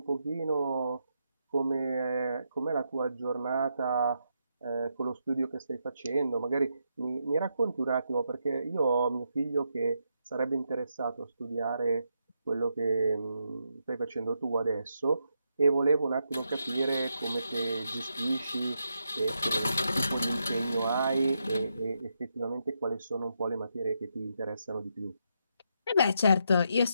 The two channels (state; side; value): inverted; both; correlation -0.82